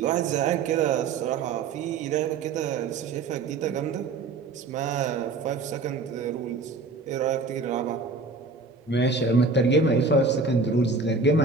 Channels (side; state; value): left; quieter; 4.1 dB